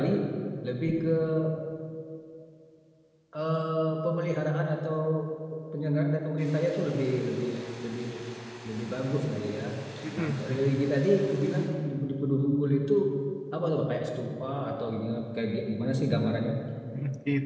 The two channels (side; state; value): both; identical; correlation 1.00